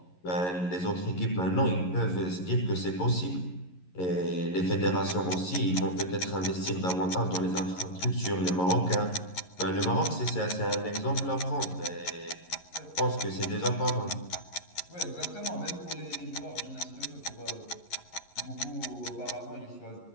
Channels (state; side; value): late; right; 11 ms